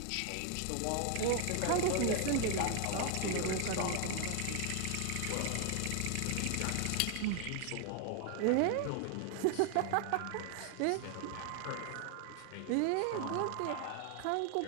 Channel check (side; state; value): both; different; correlation 0.00